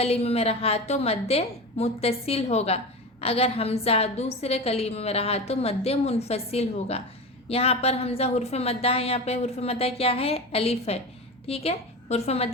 में रहा तो मद्दे मुत्तसिल होगा, अगर हमज़ा दूसरे कलीमे में रहा तो मद्दे मुनफसिल होगा। यहाँ पर हमज़ा हुर्फ मद्दा है, यहाँ पे हुर्फ मद्दा क्या है? अलिफ है, ठीक है। हुर्फ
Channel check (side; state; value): both; normal; correlation 0.26